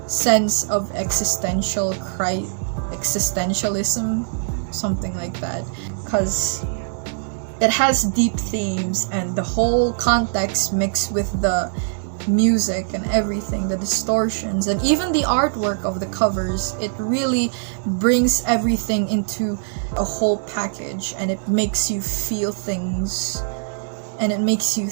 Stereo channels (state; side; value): silent; left; digital silence